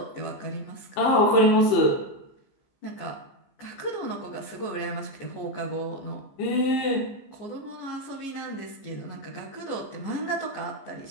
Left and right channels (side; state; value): right; late; 15 ms